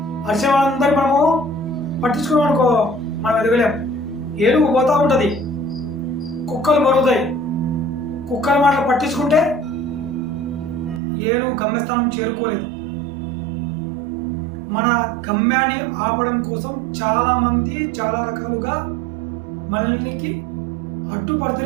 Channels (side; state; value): left; drops out; at 11.0 s